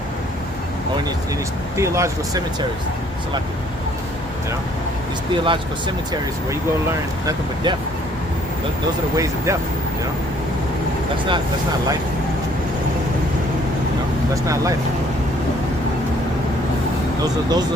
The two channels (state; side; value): normal; both; correlation 0.61